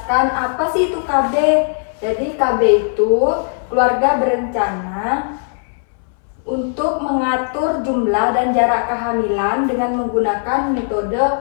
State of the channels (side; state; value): right; silent; 64 dB below the other